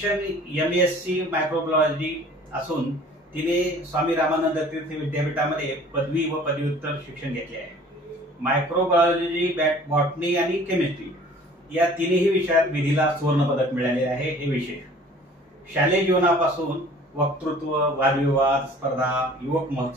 MSc मायक्रोबायोलॉजी असून तिने स्वामी रामानंद तीर्थ विद्यापीठामध्ये पदवी व पदव्युत्तर शिक्षण घेतले आहे. मायक्रोबायोलॉजी, बॉटनी आणि केमिस्ट्री या तिन्ही विषयात विधीला सुवर्ण पदक मिळाले आहे, हे विशेष. शालेय जीवनापासून वक्तृत्व, वादविवाद स्पर्धा, युवक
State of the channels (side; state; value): both; normal; correlation 0.50